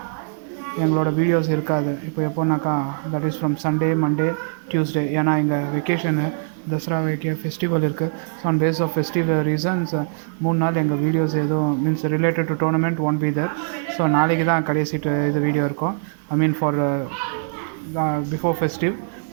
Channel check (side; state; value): left; silent; 58 dB below the other